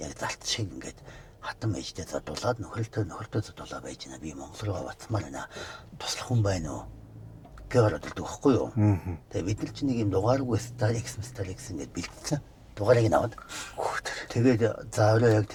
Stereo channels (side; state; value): both; identical; correlation 1.00